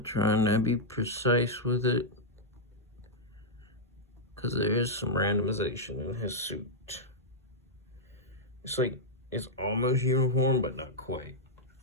trying to be precise with it, because there is some randomization in his suit. It's like, it's almost uniform, but not quite.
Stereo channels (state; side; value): normal; both; correlation -0.05